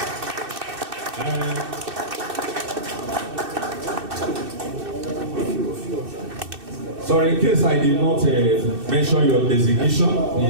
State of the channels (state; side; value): late; left; 2.6 ms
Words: Sorry, in case I did not mention your designation,